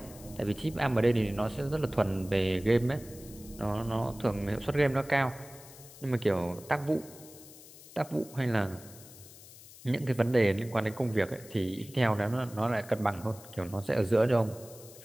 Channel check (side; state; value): left; noise; hiss, 19 dB below the sound